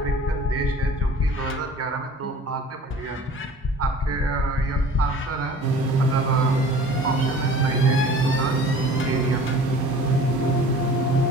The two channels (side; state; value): both; normal; correlation 0.44